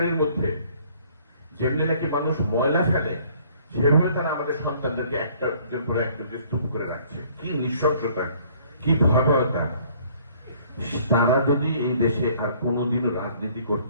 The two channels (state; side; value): inverted; both; correlation -0.58